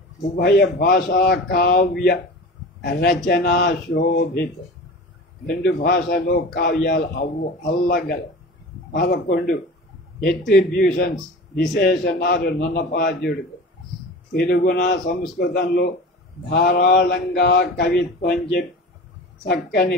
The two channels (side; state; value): both; normal; correlation 0.35